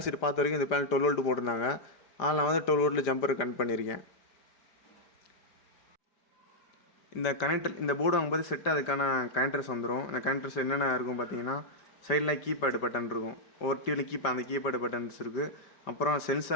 ஷீட் பார்த்த வரைக்கும் இந்த பேனல் 12 வோல்ட் போட்டிருந்தாங்க. ஆனால் நான் வந்து 12 வோல்ட்டில் ஜம்பர் கனெக்ட் பண்ணியிருக்கேன். இந்த கனெக்டர், இந்த போர்டு வாங்கும்போது செட்டு அதுக்கான கனெக்டர்ஸ் வந்துடும். இந்த கனெக்டர்ஸ் என்னென்ன இருக்கும் பார்த்தீங்கன்னா சைடில் கீபேடு பட்டன் இருக்கும். ஒவ்வொரு டிவியில் அந்த கீபேடு பட்டன்ஸ் இருக்குது. அப்புறம்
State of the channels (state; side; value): late; right; 5.1 ms